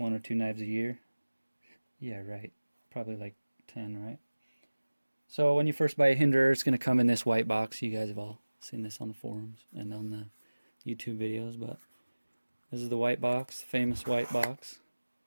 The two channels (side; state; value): both; inverted; correlation -1.00